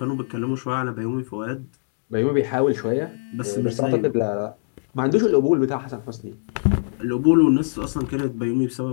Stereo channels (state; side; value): silent; right; digital silence